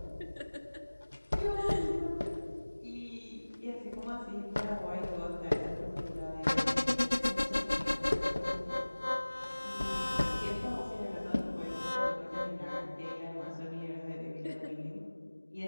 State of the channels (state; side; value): inverted; both; correlation -1.00